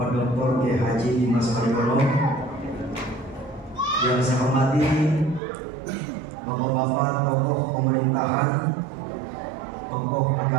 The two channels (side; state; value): left; drops out; at 5.4 s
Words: Dr. Kiai Haji Dimas Mariono, yang saya hormati bapak-bapak tokoh pemerintahan, tokoh